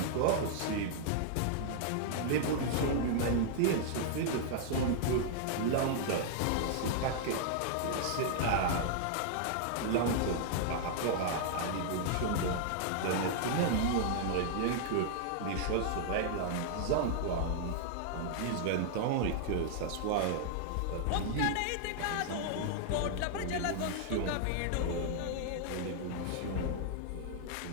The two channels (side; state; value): both; different; correlation -0.01